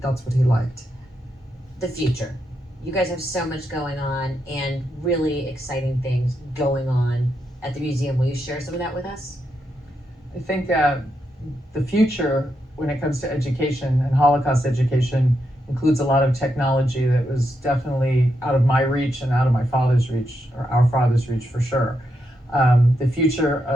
what he liked. The future. You guys have so much going on and really exciting things going on at the museum. Will you share some of that with us? I think the future, when it comes to education and Holocaust education, includes a lot of technology that was definitely out of my reach and out of my father's reach, or our father's reach for sure. The future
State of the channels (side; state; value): both; normal; correlation 0.83